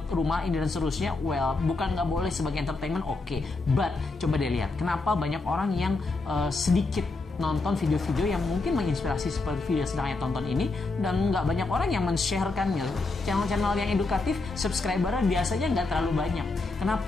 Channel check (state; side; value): quieter; right; 3.5 dB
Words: rumah ini dan seterusnya. Well, bukan nggak boleh sebagai entertainment, oke. But coba deh lihat, kenapa banyak orang yang sedikit nonton video-video yang mungkin menginspirasi seperti video yang sedang saya tonton ini, dan nggak banyak orang yang men-sharekannya. Channel-channel yang edukatif, subscribernya biasanya nggak terlalu banyak.